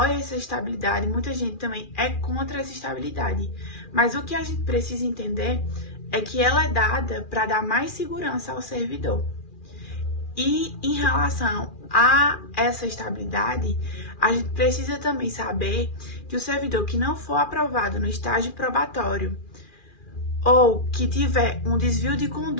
essa estabilidade, muita gente também é contra essa estabilidade. Mas o que a gente precisa entender é que ela é dada para dar mais segurança ao servidor. E em relação a essa estabilidade, a gente precisa também saber que o servidor que não for aprovado no estágio probatório ou que tiver um desvio de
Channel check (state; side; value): late; right; 2.4 ms